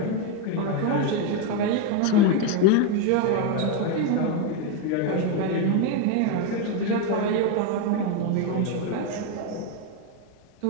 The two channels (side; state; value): both; different; correlation 0.02